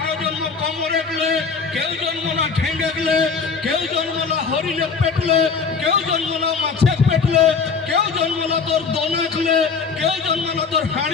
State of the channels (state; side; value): quieter; right; 5.3 dB